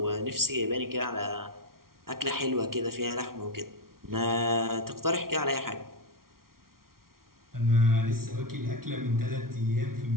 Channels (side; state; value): left; late; 0.93 ms